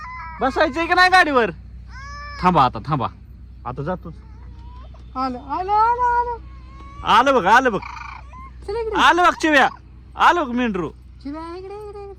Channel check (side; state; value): both; identical; correlation 1.00